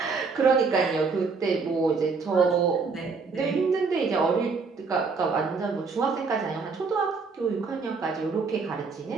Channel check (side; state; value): left; quieter; 4.7 dB